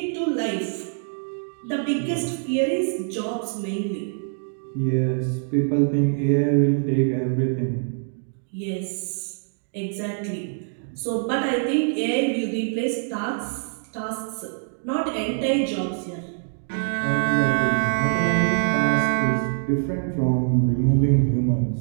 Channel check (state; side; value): silent; left; 62 dB below the other